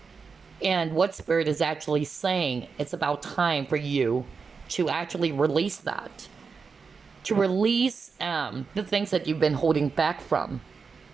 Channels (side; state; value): left; quieter; 5.2 dB